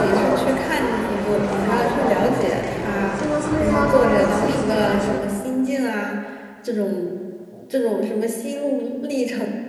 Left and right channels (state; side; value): identical; both; correlation 1.00